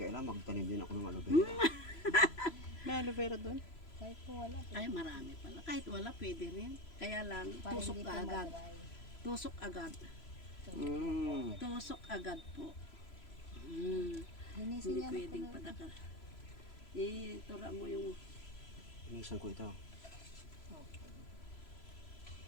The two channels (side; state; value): right; late; 3.0 ms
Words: magtanim din ako ng aloe vera. May aloe vera doon? Kahit po wala. Ay, marami pala. Kahit wala, pwede rin. Kaya lang, Para tusok hindi ka po agad. madry. Tusok agad. Mm. Tusok agad po. Linisin Hindi yan pwedeng po. padakal. Itura mo yung Inisan ko ito.